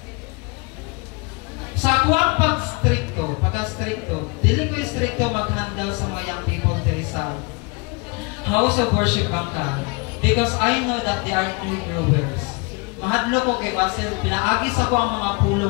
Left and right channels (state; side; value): quieter; right; 29.2 dB